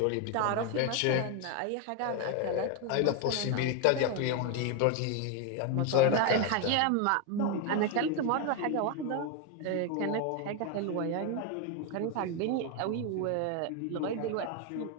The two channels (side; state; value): both; different; correlation 0.01